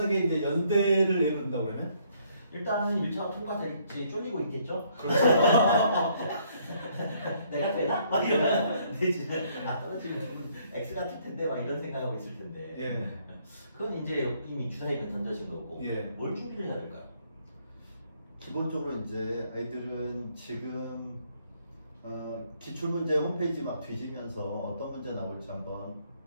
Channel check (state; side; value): inverted; both; correlation -0.67